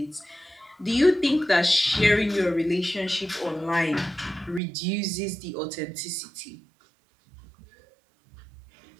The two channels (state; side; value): drops out; left; at 4.6 s